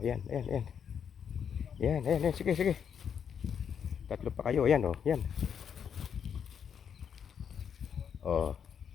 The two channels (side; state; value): right; quieter; 7.7 dB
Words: yan, ayan, ayan. Yan, ayan, ayan, sige, sige. Tatlo pa kayo, ayan o, yan. O.